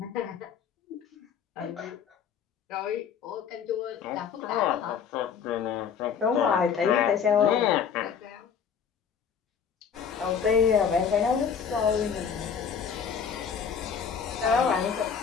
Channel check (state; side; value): quieter; right; 7.1 dB